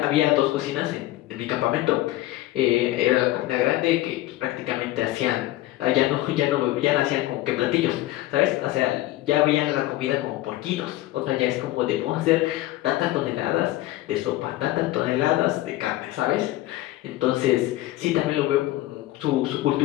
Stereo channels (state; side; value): quieter; right; 16.2 dB